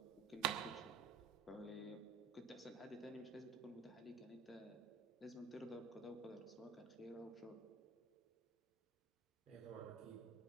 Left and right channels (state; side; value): quieter; left; 5.2 dB